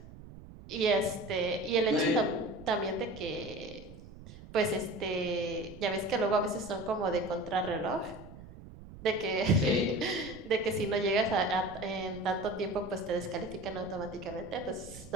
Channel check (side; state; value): right; noise; rumble, 16 dB below the sound